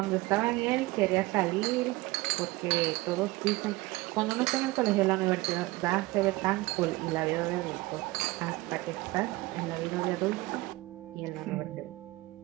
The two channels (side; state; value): left; quieter; 20.8 dB